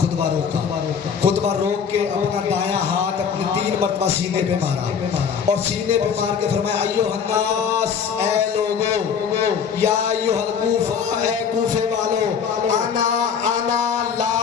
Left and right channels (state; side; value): quieter; right; 6.9 dB